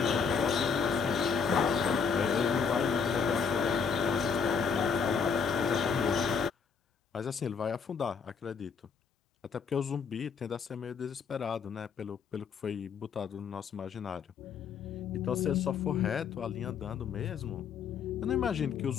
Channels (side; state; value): right; quieter; 6.1 dB